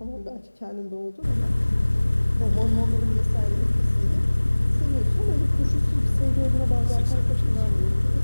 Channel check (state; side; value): inverted; both; correlation -1.00